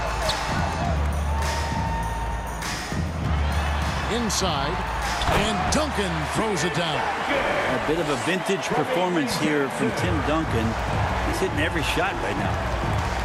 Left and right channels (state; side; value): identical; both; correlation 1.00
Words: Inside. And Duncan throws it down. A bit of a vintage performance here from Tim Duncan. He's hitting every shot right now.